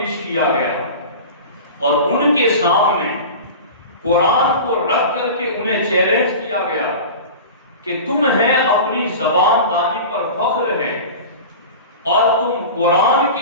کیا گیا اور ان کے سامنے قرآن کو رکھ کر کے انہیں چیلنج کیا گیا کہ تمہیں اپنی زبان دانی پر فخر ہے اور تم قرآن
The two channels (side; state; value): both; inverted; correlation -0.33